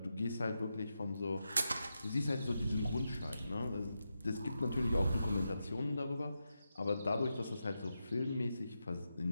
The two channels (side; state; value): both; inverted; correlation -0.88